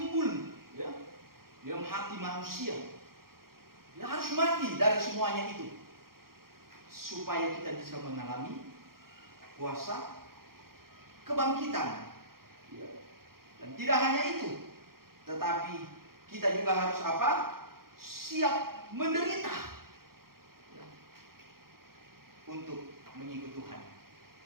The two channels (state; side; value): late; left; 0.93 ms